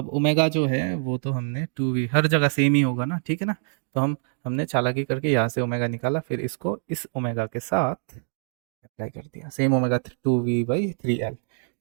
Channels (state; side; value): silent; left; digital silence